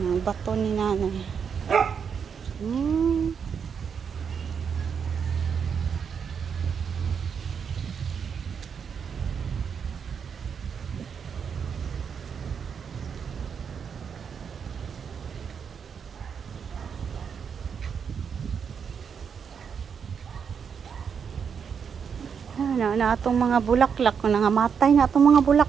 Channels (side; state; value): left; quieter; 6.8 dB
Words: bato ni nanay. Na itong mga bulaklak. Nangamatay na itong mga